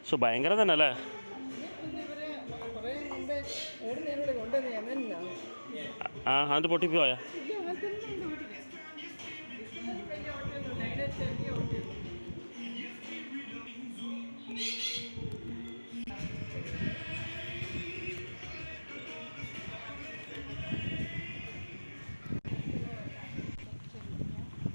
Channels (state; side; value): inverted; both; correlation -1.00